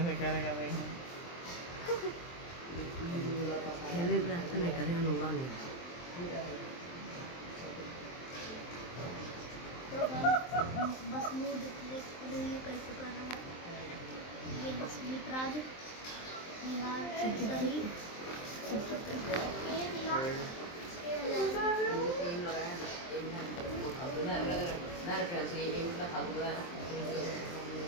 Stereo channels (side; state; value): right; late; 23 ms